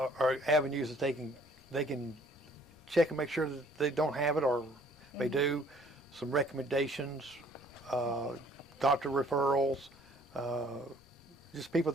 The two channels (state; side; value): noise; left; rumble, 30 dB below the sound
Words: avenues that they can check and make sure that they don't have it, or they do. Some recommendations, doctor referrals, just people